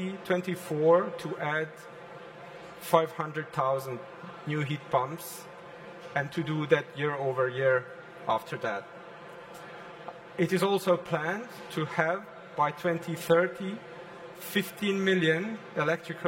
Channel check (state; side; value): identical; both; correlation 1.00